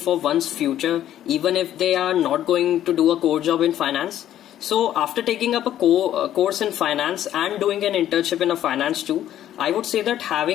one's future even if they are not going to do a core job in finance? So after taking up a course in finance and doing an internship in a finance too, I would say that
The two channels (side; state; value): right; quieter; 11.7 dB